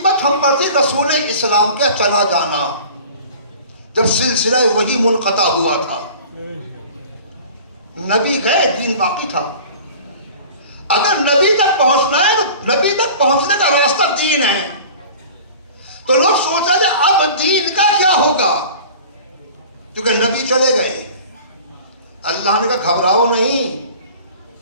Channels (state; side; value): inverted; both; correlation -0.42